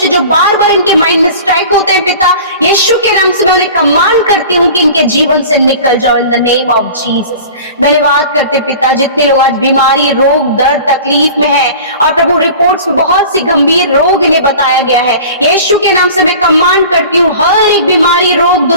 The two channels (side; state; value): both; inverted; correlation -0.40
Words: जो बार बार इनके इनके माइंड में स्ट्राइक होते हैं पिता, यीशु के नाम से मैं उन्हें कमांड करती हूँ कि इनके जीवन से निकल जाओ in the name of Jesus. धन्यवाद करते पिता, जितने लोग आज बीमारी, रोग, दर्द, तकलीफ में हैं और प्रभु रिपोर्ट्स में बहुत सी गंभीर रोग इन्हें बताया गया है, यीशु के नाम से मैं कमांड करती हूँ हर एक बीमारी, रोग,